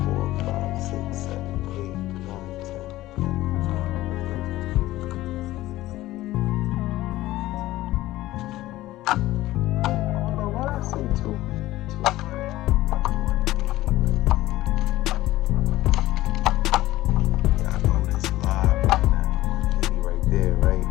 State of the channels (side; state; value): right; quieter; 16.4 dB